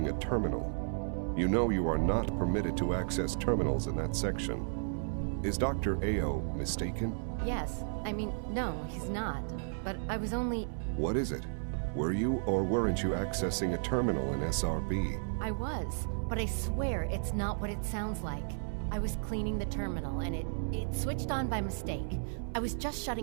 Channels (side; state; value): left; silent; 55 dB below the other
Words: a terminal. You know you are not permitted to access terminals in that section. Is Dr. Ao mistaken? Yes. I mean, no, he's not. But I was only... What is it? Were you or weren't you accessing a terminal in SRB? I was, but I swear it's not what it sounds like. I was cleaning the terminal and it switched on by mistake. I was just